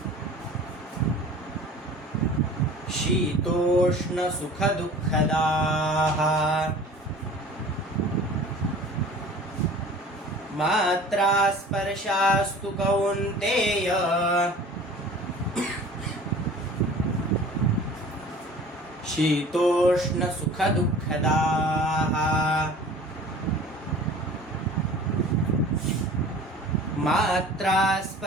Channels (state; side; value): normal; both; correlation 0.44